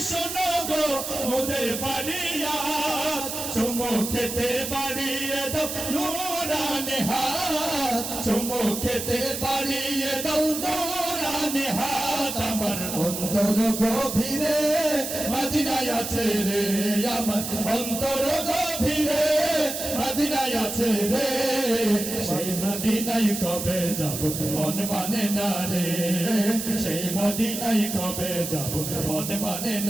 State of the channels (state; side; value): noise; right; hiss, 5 dB below the sound